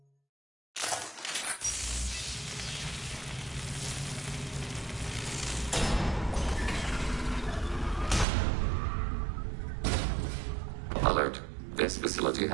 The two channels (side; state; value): left; drops out; at 8.2 s